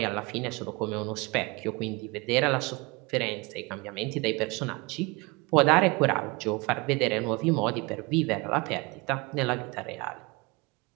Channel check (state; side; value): quieter; left; 25.6 dB